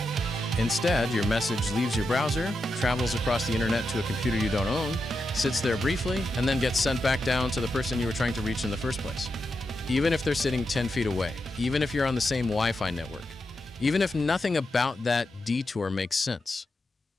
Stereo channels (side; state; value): both; normal; correlation 0.87